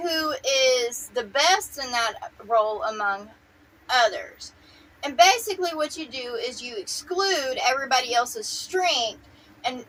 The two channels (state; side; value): identical; both; correlation 1.00